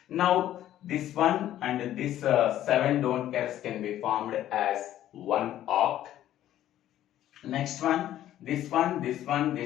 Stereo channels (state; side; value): quieter; right; 12.5 dB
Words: Now this one and this 7 don't cares can be formed as one oct. Next one, this